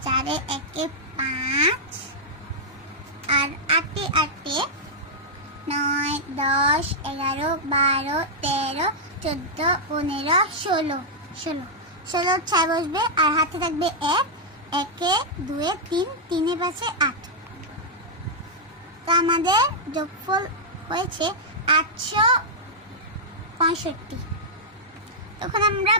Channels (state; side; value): normal; both; correlation -0.06